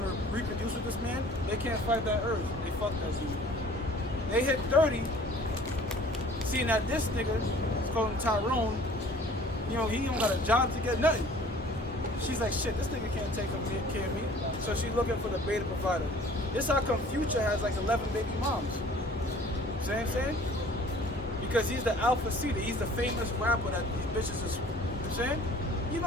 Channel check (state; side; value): normal; both; correlation 0.50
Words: to reproduce with this man, they can't fight that urge. They fuck that dude. They hit 30, seeing that this nigga, let's call him Tyrone, you know, he don't got a job to get nothing. She's like, shit, this nigga can't take care of me. So she's looking for the beta provider. This how come Future has like 11 baby moms. See what I'm saying? Because he's the alpha seeder. He's the famous rapper that these bitches is, you know what I'm saying? You know,